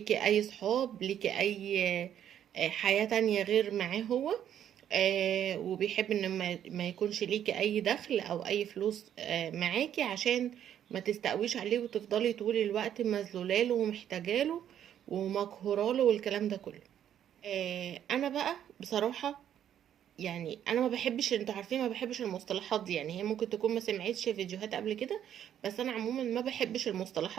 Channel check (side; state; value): left; quieter; 10.1 dB